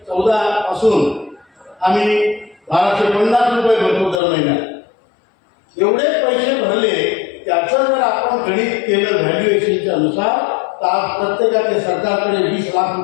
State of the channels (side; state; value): right; drops out; at 4.2 s